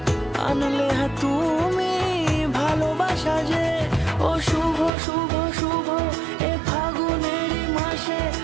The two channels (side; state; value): left; drops out; at 4.9 s